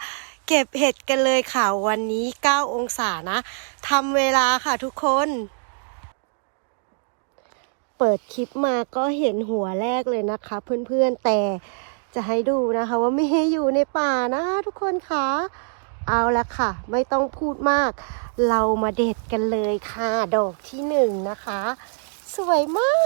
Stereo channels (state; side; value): silent; left; 63 dB below the other